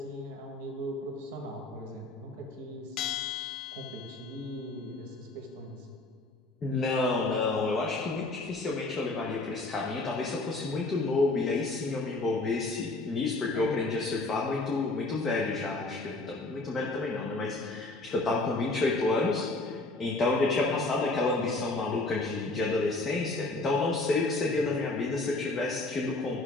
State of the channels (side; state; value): right; quieter; 3.0 dB